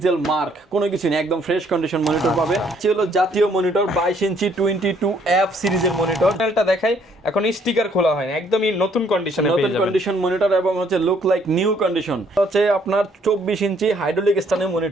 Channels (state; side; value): normal; both; correlation 0.65